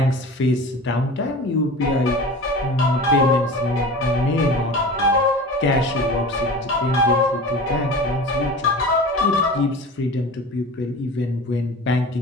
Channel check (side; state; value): both; normal; correlation 0.35